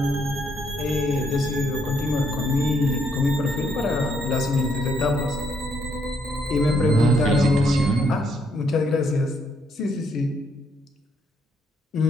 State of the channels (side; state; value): both; normal; correlation 0.73